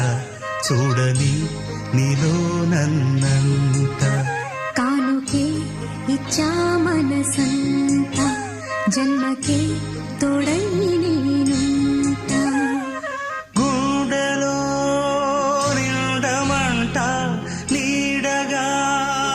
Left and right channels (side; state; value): both; identical; correlation 1.00